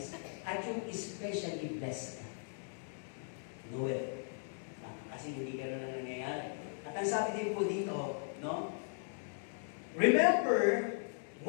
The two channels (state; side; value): silent; right; digital silence